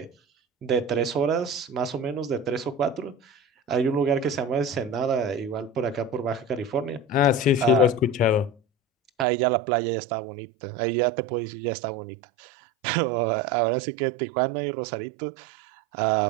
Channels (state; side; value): drops out; left; at 9.2 s